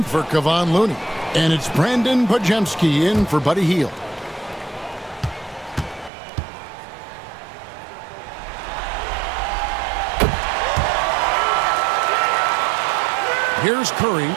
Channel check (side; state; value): left; drops out; at 6.1 s